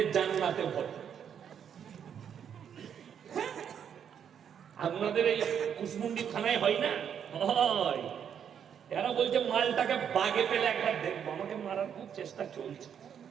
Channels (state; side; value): quieter; left; 8.3 dB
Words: জান্নাতে ভরে। আপনাদের এই কুসমুন্ডি থানায় হয় না? হয়। এরা বলছে মালটাকে বাগে পেলে একবার দেখবো। আমাকে মারার খুব চেষ্টা চলছে।